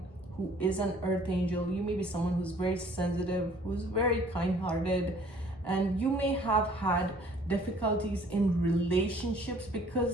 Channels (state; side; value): normal; both; correlation 0.56